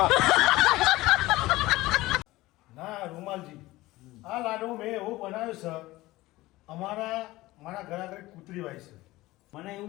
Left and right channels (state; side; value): quieter; right; 18.6 dB